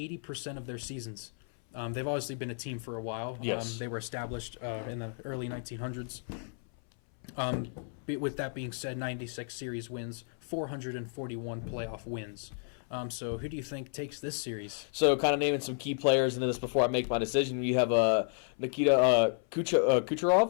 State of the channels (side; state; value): right; silent; 56 dB below the other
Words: of their seasons. They've obviously been a team for a while. Yes. They were established in the early 1900s. With that being said, 96 series wins, 441 playoff wins. So who do you think takes this series? So kind of naming some key players into this before I make my decision. You have Nikita